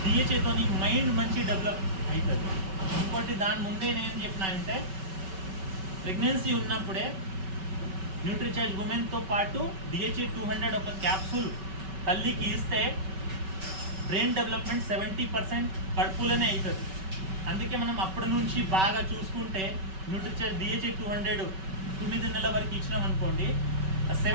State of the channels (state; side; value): late; left; 5.3 ms